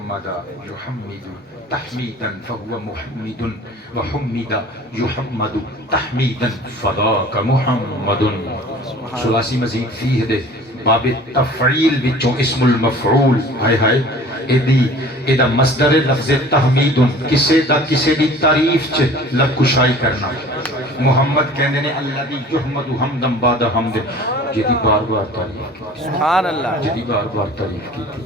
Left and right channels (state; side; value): normal; both; correlation 0.45